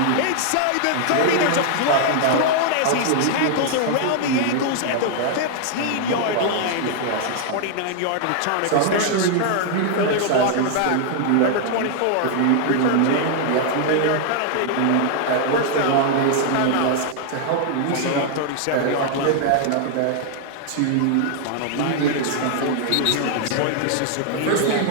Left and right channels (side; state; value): both; different; correlation 0.00